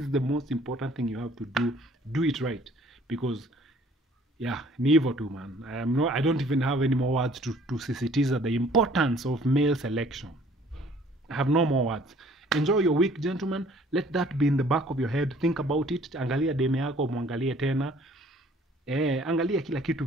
the most important thing you have to do. Do it right. Because yeah, ni hivyo tu, man. I don't even have any more words to sisitiza the importance of male selection. I have no more words. Enjoy your week, gentlemen. Let that be in the back of your head. Think about it. Angalia deme yako, muangalie tena. Angalia kila kitu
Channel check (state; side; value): normal; both; correlation 0.56